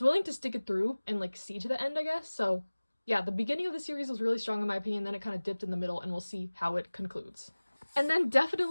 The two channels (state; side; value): inverted; both; correlation -1.00